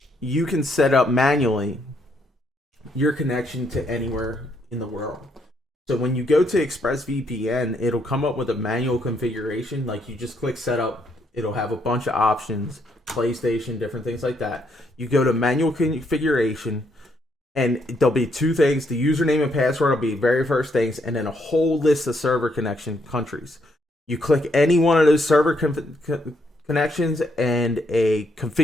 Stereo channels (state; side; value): normal; both; correlation 0.74